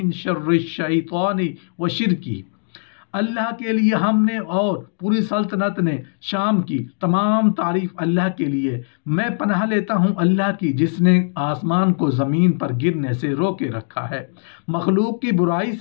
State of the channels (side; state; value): right; silent; digital silence